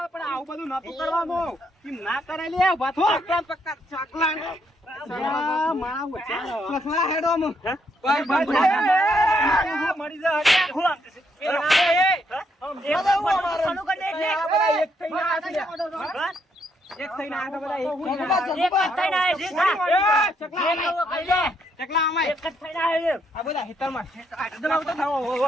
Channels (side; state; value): both; normal; correlation 0.74